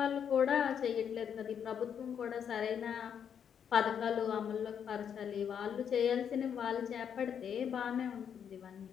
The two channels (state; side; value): quieter; right; 8.1 dB